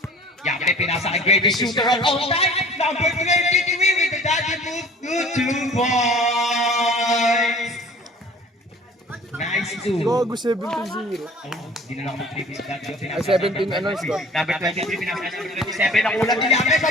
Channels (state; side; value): normal; both; correlation 0.47